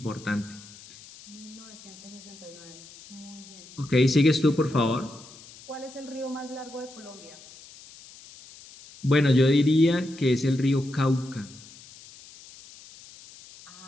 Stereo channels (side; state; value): left; noise; hiss, 20 dB below the sound